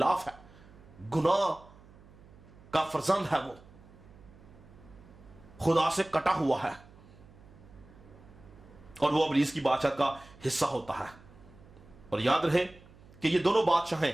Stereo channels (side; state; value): right; noise; hum, 23 dB below the sound